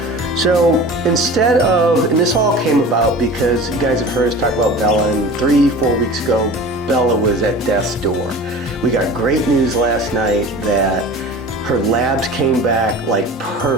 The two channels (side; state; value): both; normal; correlation 0.37